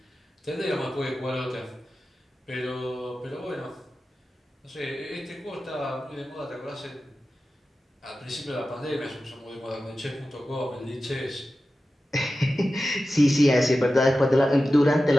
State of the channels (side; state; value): both; normal; correlation 0.94